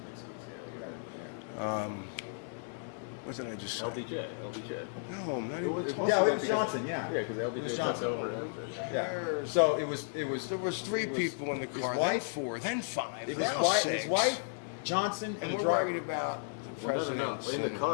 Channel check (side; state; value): right; silent; 55 dB below the other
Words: What did I just say? LBJ. No, I'm not even talking Yeah, it about was that. Johnson. Yeah, Yeah, because It was LBJ took Johnson. over after. So it was. There was three people in the car, then wife? four, then five, His now wife, six. his wife, Johnson, And the we're driver. worried about the presidents. In the and